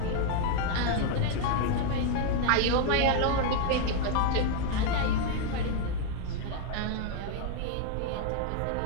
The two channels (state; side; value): different; both; correlation 0.00